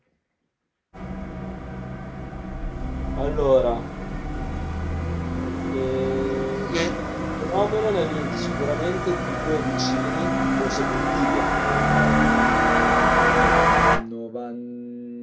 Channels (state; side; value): identical; both; correlation 1.00